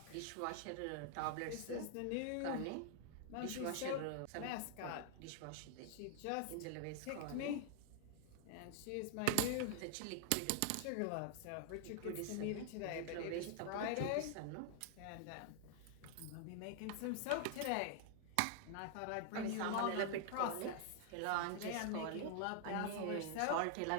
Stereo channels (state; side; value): different; both; correlation 0.00